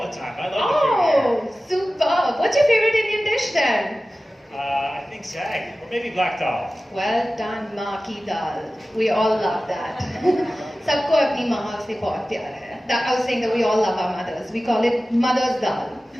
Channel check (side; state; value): both; normal; correlation 0.96